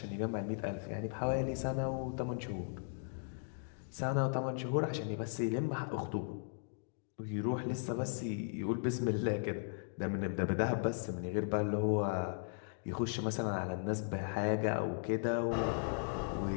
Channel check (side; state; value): right; silent; digital silence